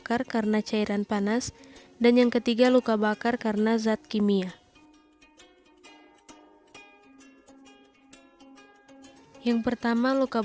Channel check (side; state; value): both; identical; correlation 1.00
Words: karena cairan panas, dan yang ketiga luka bakar karena zat kimia. Yang pertama, luka